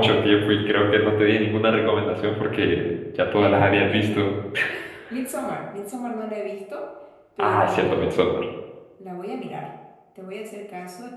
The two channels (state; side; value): identical; both; correlation 1.00